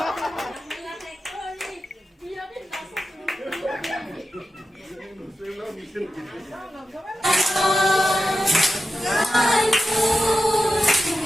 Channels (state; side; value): normal; both; correlation 0.91